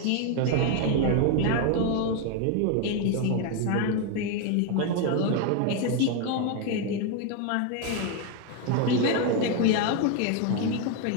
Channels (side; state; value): both; different; correlation 0.01